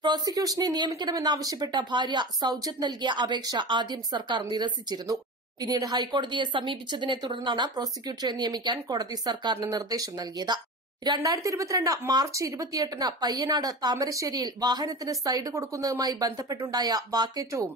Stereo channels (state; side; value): normal; both; correlation 0.29